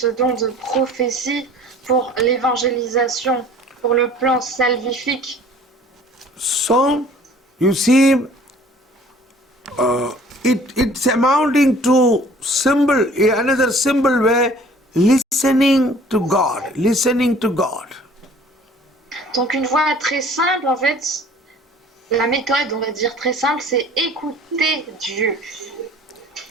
don de prophétie pour l'évangélisation, pour le plan salvifique. So, you see, it's amounting to another symbol way, listening to God, listening to God. Donc une voie très simple, en fait, la méthode, on va dire très simple, c'est écouter Dieu.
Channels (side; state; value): both; normal; correlation 0.51